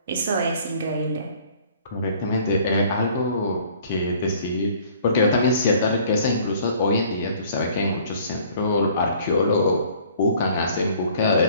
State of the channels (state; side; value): inverted; both; correlation -0.55